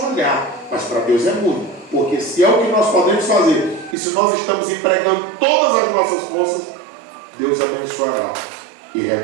olhar, mas para Deus é muito, porque se é o que nós podemos fazer, e se nós estamos empregando todas as nossas forças, Deus abençoará e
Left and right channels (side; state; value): left; drops out; at 4.0 s